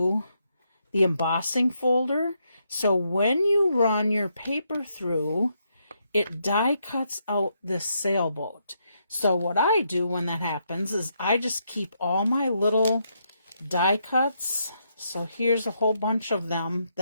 the embossing folder. So when you run your paper through, it die cuts out this sailboat. So what I do when that happens is I just keep all my little die cuts. So here's a whole bunch of them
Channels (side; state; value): both; inverted; correlation -0.78